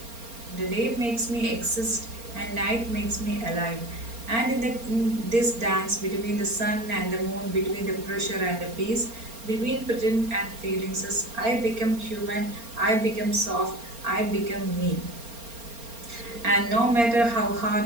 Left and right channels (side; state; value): left; late; 4.3 ms